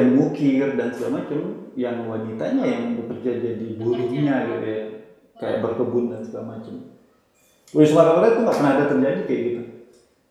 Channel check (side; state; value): both; identical; correlation 1.00